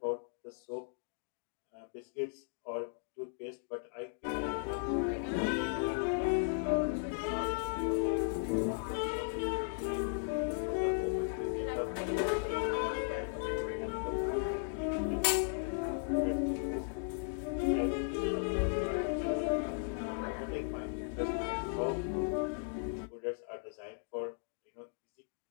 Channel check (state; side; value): silent; right; digital silence